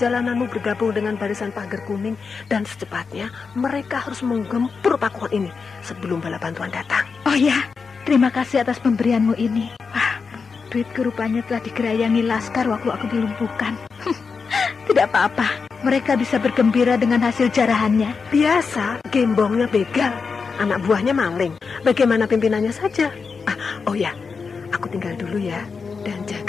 bergabung dengan barisan Pagar Kuning, dan secepatnya mereka harus menggempur Pakuan ini sebelum bala bantuan datang. Oh ya, terima kasih atas pemberianmu ini. Duitku rupanya telah digerayangi Laskar waktu aku dilumpuhkan. Tidak apa-apa, mereka bisa bergembira dengan hasil jarahannya. Biasa, gembongnya begal. anak buahnya maling. Bagaimana pimpinannya saja? Oh ya, aku tinggal dulu ya. Dan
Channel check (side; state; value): right; quieter; 5.2 dB